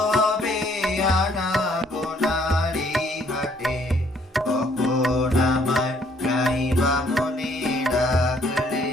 হবে আনা গোনার এই ঘাটে, কখন আমায় গাইবা মনে ডাকলে,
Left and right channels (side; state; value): both; normal; correlation 0.64